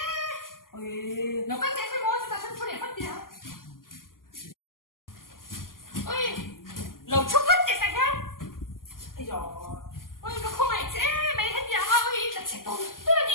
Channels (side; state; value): right; late; 0.91 ms